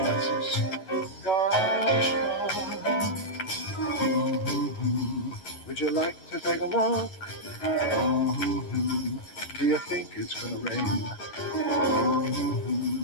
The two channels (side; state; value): right; late; 11 ms